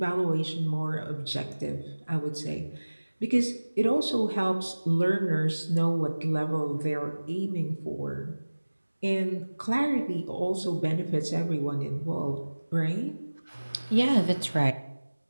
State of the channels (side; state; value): both; inverted; correlation -1.00